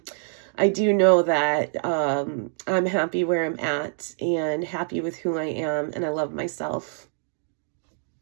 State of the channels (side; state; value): left; silent; digital silence